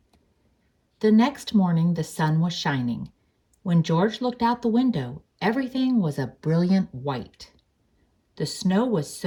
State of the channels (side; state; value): both; identical; correlation 1.00